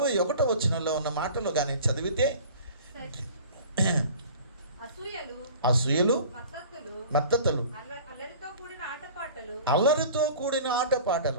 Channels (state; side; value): inverted; both; correlation -0.43